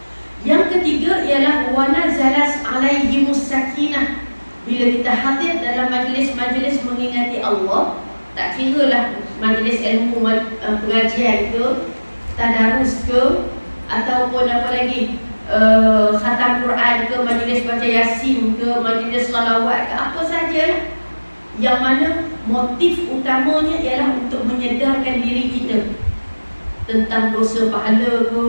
Yang ketiga ialah wa nazalas alaihimus sakinah. Bila kita hadir dalam majlis-majlis mengingati Allah, tak kiralah majlis ilmu pengajian ke, tadarus ke, ataupun apa lagi, khatam Quran ke, majlis baca Yasin ke, majlis salawat ke, apa sajalah, yang mana motif utamanya ialah untuk menyedarkan diri kita tentang dosa pahala ke,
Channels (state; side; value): inverted; both; correlation -1.00